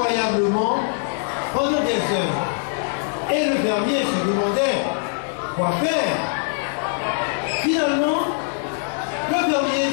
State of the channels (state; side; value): silent; right; 64 dB below the other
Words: pendant des heures. Et le fermier se demandait quoi faire. Finalement, le fermier